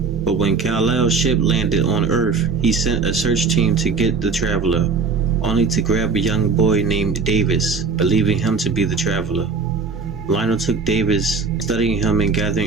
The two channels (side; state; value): left; quieter; 4.7 dB